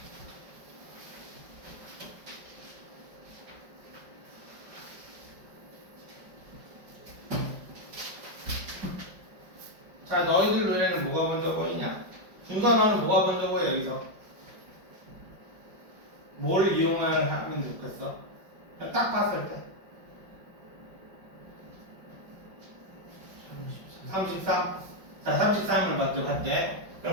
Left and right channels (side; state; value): left; late; 5.3 ms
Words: 자, 너희들 눈에는 뭐가 먼저 보이냐? 준선아는 뭐가 먼저 보여, 여기서? 뭘 하면 좋겠어? 그냥 딱 봤을 때. 33. 자, 33을 먼저 할게.